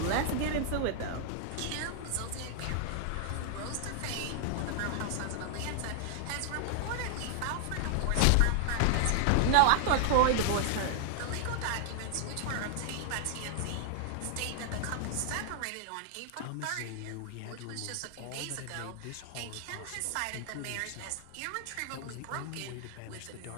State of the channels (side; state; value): both; different; correlation 0.00